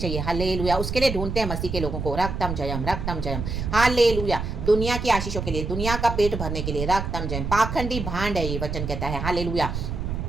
हालेलुया। उसके लिए ढूंढते हैं मसीह के लोगों को। रक्तम जयम, रक्तम जयम। हालेलुया। दुनिया की आशीषों के लिए, दुनिया का पेट भरने के लिए। रक्तम जयम। पाखंडी भांड है ये वचन कहता है। हालेलुया।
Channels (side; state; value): right; noise; rumble, 4 dB below the sound